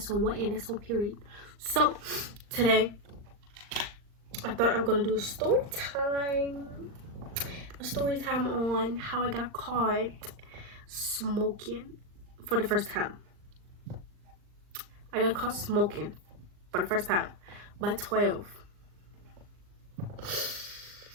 on what, and that's on period. So today I thought I'm gonna do a story time on how I got caught smoking for the first time. I got caught smoking for the first time by 12.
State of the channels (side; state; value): left; late; 39 ms